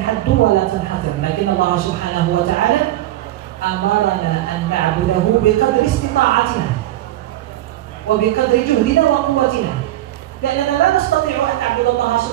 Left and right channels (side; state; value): left; quieter; 14.9 dB